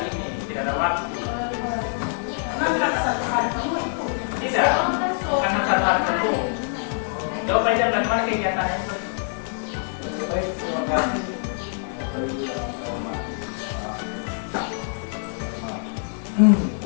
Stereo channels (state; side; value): silent; right; 62 dB below the other